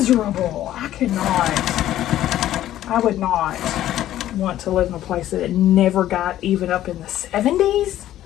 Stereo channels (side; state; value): right; quieter; 12.9 dB